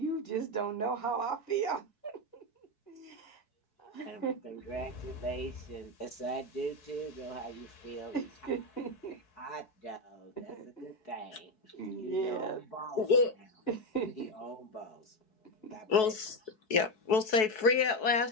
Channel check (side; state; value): right; late; 4.6 ms